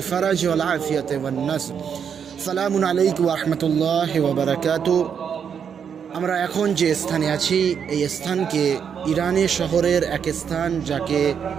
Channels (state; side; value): quieter; left; 7.4 dB